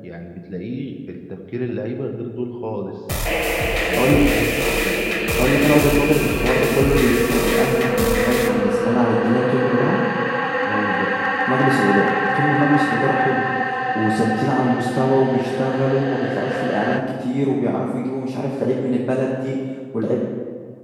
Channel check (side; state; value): both; identical; correlation 1.00